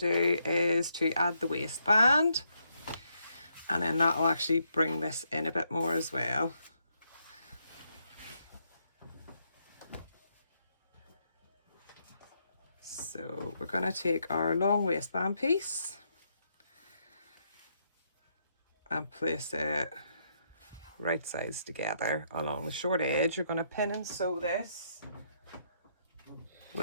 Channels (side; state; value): both; inverted; correlation -0.76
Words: is to add the waistband, and then that will actually bring this in a bit more as well. So we're going to take our long waistband piece and place it right sides together along the short edge. You're going to pin and sew this